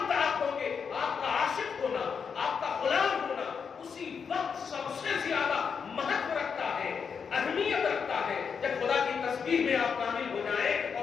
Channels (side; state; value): right; quieter; 6.3 dB